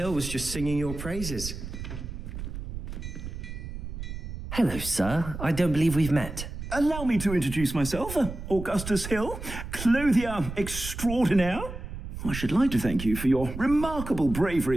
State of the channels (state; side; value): noise; right; rumble, 8 dB below the sound